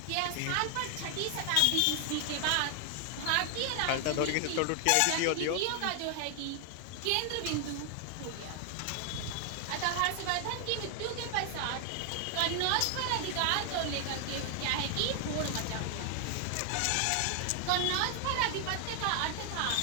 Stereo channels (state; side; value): different; both; correlation 0.00